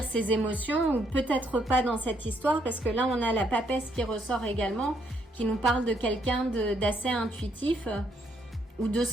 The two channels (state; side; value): normal; both; correlation 0.72